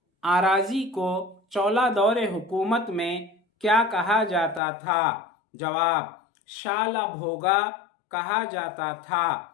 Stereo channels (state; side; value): drops out; right; at 4.6 s